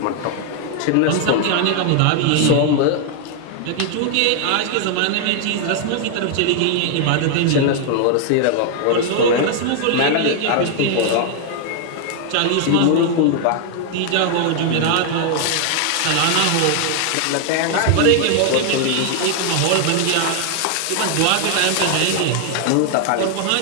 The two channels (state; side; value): different; both; correlation 0.00